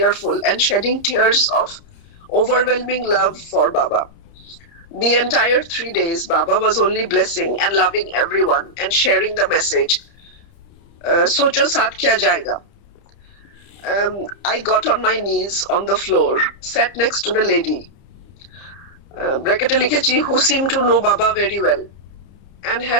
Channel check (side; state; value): right; late; 30 ms